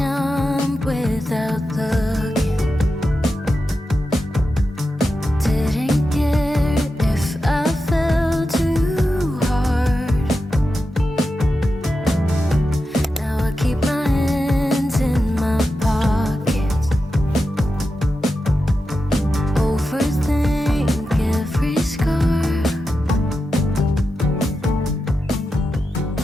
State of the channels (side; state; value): both; normal; correlation 0.90